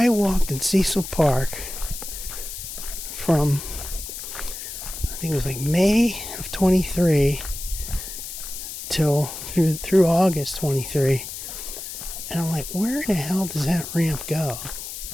walked in Cecil Park from, I think it was like May of 23 till through August 23. And I'm like, where the hell does that ramp go?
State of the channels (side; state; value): left; noise; hiss, 9 dB below the sound